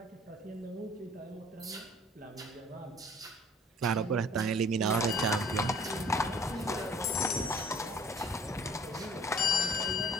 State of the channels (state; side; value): normal; both; correlation 0.52